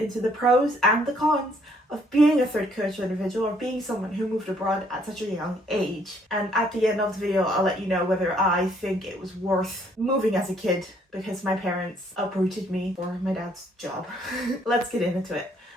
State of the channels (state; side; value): normal; both; correlation 0.65